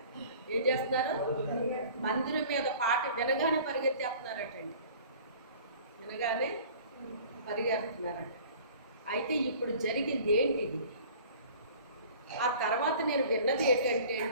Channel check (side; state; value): both; inverted; correlation -0.47